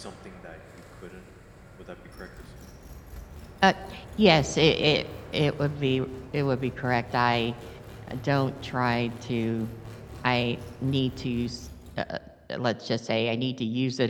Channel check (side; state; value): both; identical; correlation 1.00